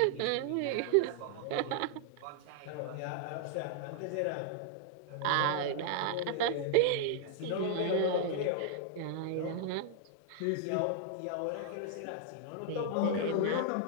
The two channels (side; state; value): both; different; correlation 0.00